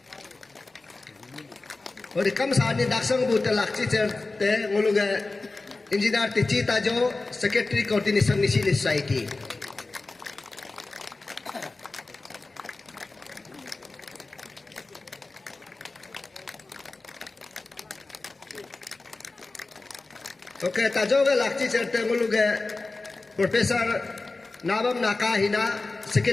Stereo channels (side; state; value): right; quieter; 3.4 dB